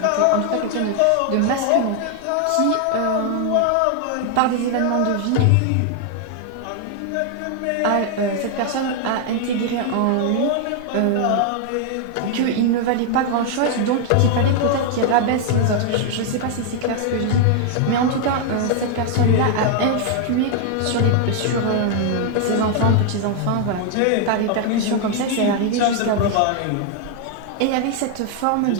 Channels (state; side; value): different; both; correlation 0.00